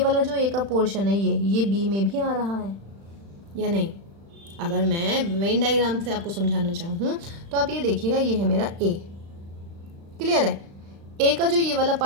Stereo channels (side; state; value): left; late; 35 ms